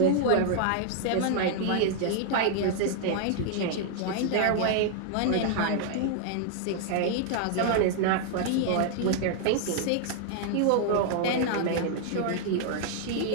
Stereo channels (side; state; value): both; different; correlation -0.01